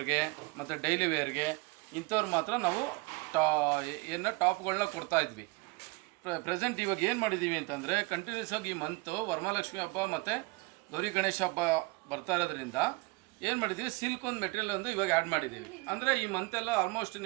ಮತ್ತು ಡೈಲಿ ವೇರ್ಗೆ ಇಂಥವ್ರು ಮಾತ್ರ ನಾವು ಟಾಪ್ಗಳನ್ನ ಕೊಡ್ತಾಯಿದ್ವಿ. ಪ್ರೆಸೆಂಟ್ ಇವಾಗ ಏನು ಮಾಡಿದ್ದೀವಿ ಅಂತಂದರೆ ಕಂಟಿನ್ಯೂಸ್ ಆಗಿ ಈ ಮಂತು ವರಮಹಾಲಕ್ಷ್ಮಿ ಹಬ್ಬ ಮತ್ತು ಗೌರಿ ಗಣೇಶ ಹಬ್ಬ ಬರ್ತಾ ಇರೋದ್ರಿಂದ ಏನು ಮಾಡಿದ್ದೀವಿ, ಸಿಲ್ಕ್ ಒಂದು ಮೆಟೀರಿಯಲ್ ಒಂದು ಇವಾಗ ಆ್ಯಡ್ ಮಾಡಿದ್ದೀವಿ. ಅಂದರೆ ಈ ಮಂತೆಲ್ಲ ಆಲ್ಮೋಸ್ಟ್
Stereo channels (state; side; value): quieter; left; 25.4 dB